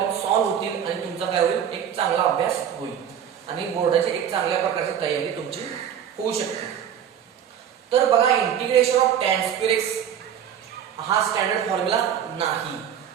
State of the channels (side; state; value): left; quieter; 9.1 dB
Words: सॉल्व्ह होतील आणि तुमचा काय होईल, एक चांगला अभ्यास होईल आणि बोर्डाची एक चांगल्या प्रकारची तयारी तुमची होऊ शकते. तर बघा, integration of tan square x हा स्टँडर्ड फॉर्म्युला नाही.